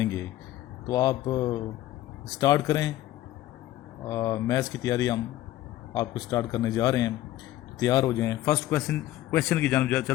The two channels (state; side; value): quieter; right; 14.7 dB